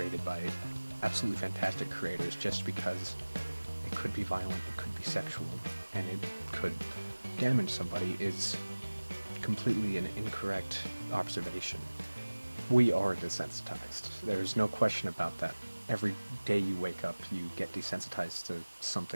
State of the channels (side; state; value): both; inverted; correlation -1.00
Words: by absolutely fantastic creators just because it could be violent, it could be sexual, and it could damage somebody is completely an incorrect observation. We are desensitized. There's no question about that. Every day you wake up, you get desensitized to